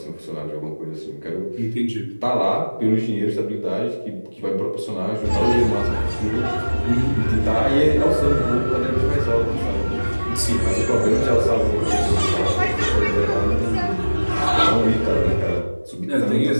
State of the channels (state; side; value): inverted; both; correlation -1.00